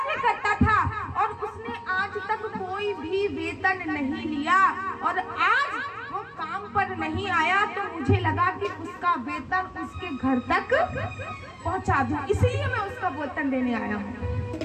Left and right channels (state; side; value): identical; both; correlation 1.00